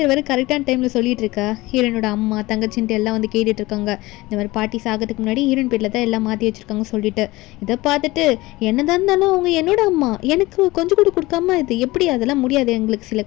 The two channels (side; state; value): right; quieter; 20.1 dB